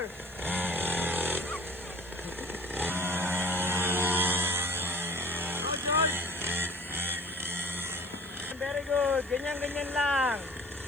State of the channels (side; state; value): left; noise; hiss, 26 dB below the sound